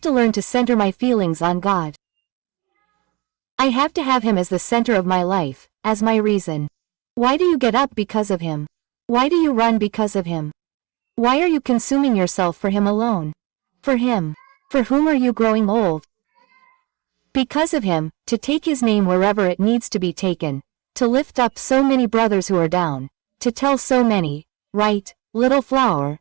to learn to center my feelings on God. I have to have him as the center of my life, as my reason. Why do you get up because of him? Why do you run because of him? Why are you consuming yourself for him alone? For him. For whom are you growing old? Because of him, to take his name wherever it needs to be taken, to lift up so many brothers who are down, to tell so many, right, little flower,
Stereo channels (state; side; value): quieter; left; 25.2 dB